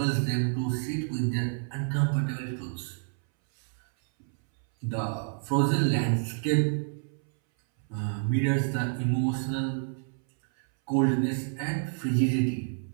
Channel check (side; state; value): left; silent; 59 dB below the other